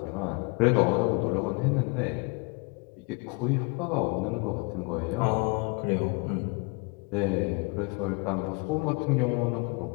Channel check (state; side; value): quieter; right; 30.7 dB